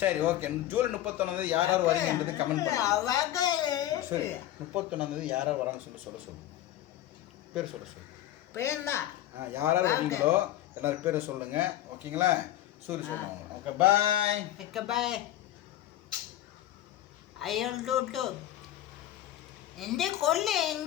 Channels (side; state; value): right; quieter; 13.4 dB